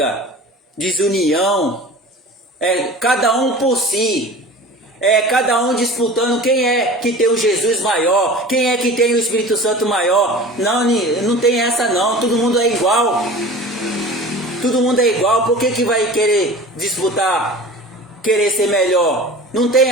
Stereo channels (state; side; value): normal; both; correlation 0.38